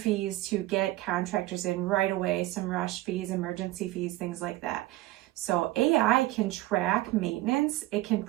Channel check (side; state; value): left; quieter; 17.3 dB